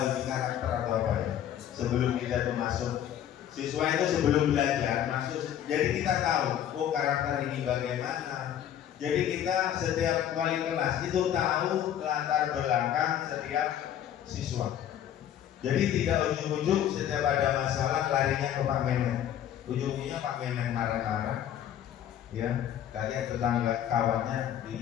uji karakter atau apa ya? Sebelum kita tuh masuk, siswa itu sebelum belajar masuk, jadi kita tahu, karakter ini bagaimana. Jadi kita setiap wali kelas itu tahu latar belakang setiap siswa. Jadi tidak ujung-ujung setiap ada masalah larinya ke Pak Memet. Ujungnya Pak Memet marah-marah, ya, kayak tetangga kawannya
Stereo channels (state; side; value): quieter; right; 10.5 dB